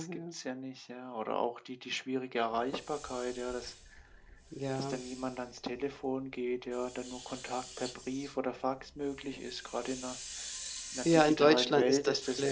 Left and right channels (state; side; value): identical; both; correlation 1.00